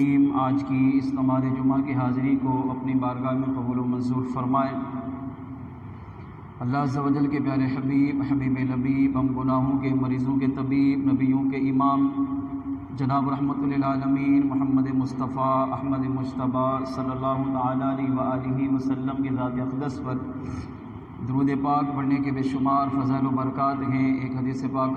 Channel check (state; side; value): identical; both; correlation 1.00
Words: آج کی اس نماز جمعہ کی حاضری کو اپنی بارگاہ میں قبول و منظور فرمائے۔ اللہ عز و جل کے پیارے حبیب لبیب، ہم گناہوں کے مریضوں کے طبیب، نبیوں کے امام جناب رحمت للعالمین محمد مصطفیٰ احمد مجتبیٰ صلی اللہ تعالیٰ علیہ وآلہ وسلم کی ذات اقدس پر درود پاک پڑھنے کے بے شمار فضائل و برکات ہیں۔ ایک حدیث پاک